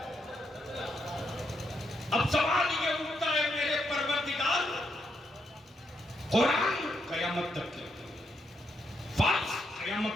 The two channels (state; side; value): normal; both; correlation 0.79